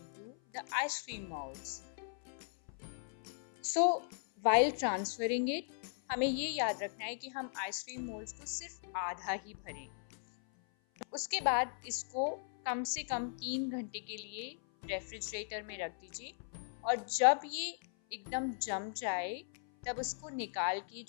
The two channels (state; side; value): silent; right; 53 dB below the other